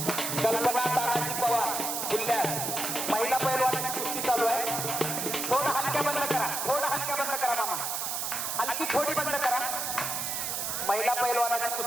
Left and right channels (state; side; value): noise; right; hiss, 2 dB below the sound